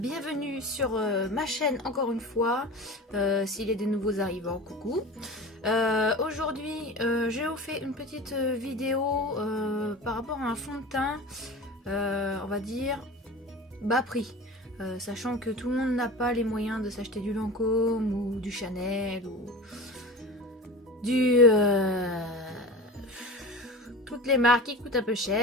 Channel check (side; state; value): both; normal; correlation 0.33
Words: sur ma chaîne encore une fois, s'il y a des nouveaux arrivants, coucou. Aujourd'hui j'ai vous fait une petite vidéo par rapport à un fond de teint, on va dire bas prix, sachant que tout le monde n'a pas les moyens de s'acheter du Lancôme ou du Chanel ou du... toutes les marques qui coûtent un peu